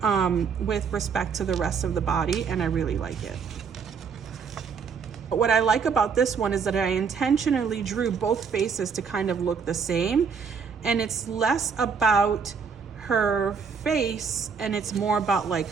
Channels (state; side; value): quieter; left; 6.0 dB